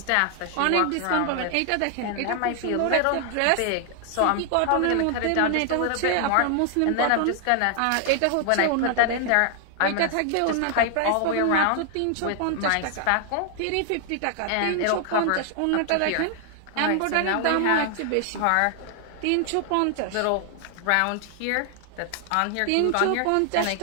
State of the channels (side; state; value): both; different; correlation 0.00